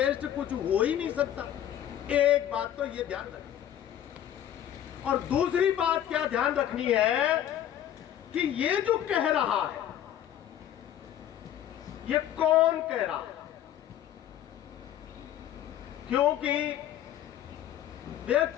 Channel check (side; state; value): right; quieter; 11.1 dB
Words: कुछ हो ही नहीं सकता। एक बात तो ये ध्यान रखनी, और दूसरी बात क्या ध्यान रखनी है कि ये जो कह रहा है ये कौन कह रहा है, क्योंकि